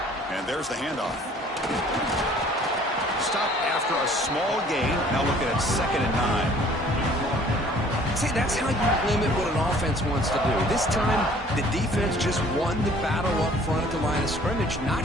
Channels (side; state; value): both; normal; correlation 0.54